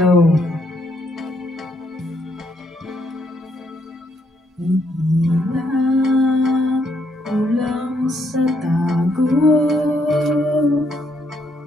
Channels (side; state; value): both; normal; correlation 0.73